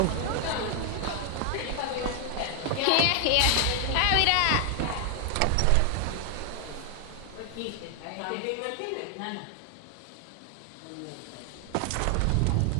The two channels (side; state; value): both; different; correlation 0.00